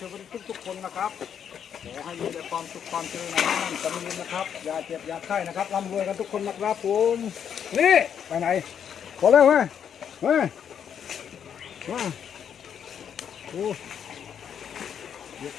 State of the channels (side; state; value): right; quieter; 8.3 dB